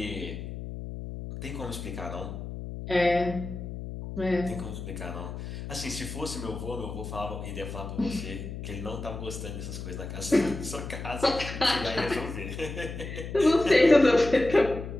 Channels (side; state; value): left; noise; hum, 8 dB below the sound